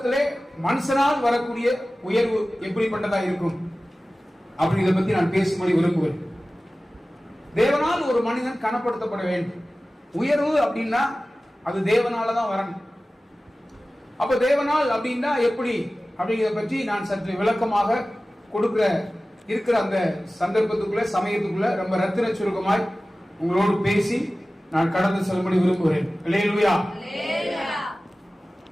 மனுஷனால் வரக்கூடிய உயர்வு எப்படிப்பட்டதா இருக்கும் அப்படி இதை பத்தி நான் பேசும்படி விரும்புகிறேன். தேவனால் ஒரு மனிதன் கனப்படுத்தப்பட வேண்டும். உயர்வு அப்படின்னா அது தேவனாலதான் வரணும். அப்ப தேவனால் அப்படின்னா எப்படி அப்படிங்கிறத பற்றி நான் சற்று விளக்கமாக இருக்கிற அந்த சந்தர்ப்பத்துக்குள்ள சமயத்துக்குள்ள ரொம்ப ரத்தின சுருக்கமாய் உங்களோடு பேசி நான் கடந்து செல்லும்படி விரும்புகிறேன். அல்லேலூயா.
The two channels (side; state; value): both; normal; correlation 0.97